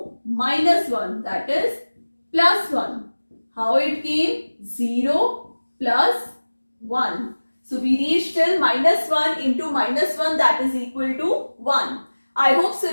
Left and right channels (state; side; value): inverted; both; correlation -1.00